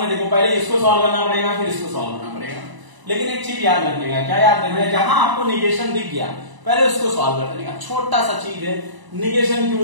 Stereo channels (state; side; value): late; left; 1.0 ms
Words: है, देखो पहले इसको सॉल्व करना पड़ेगा, फिर इसको सॉल्व करना पड़ेगा। लेकिन एक चीज याद रखने का, क्या याद रखना है, जहां आपको निगेशन दिख गया पहले उसको सॉल्व कर देने का। छोटा सा चीज है, निगेशन